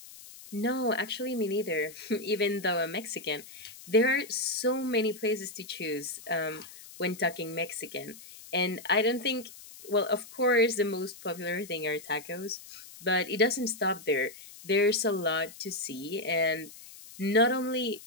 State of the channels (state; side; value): noise; left; hiss, 17 dB below the sound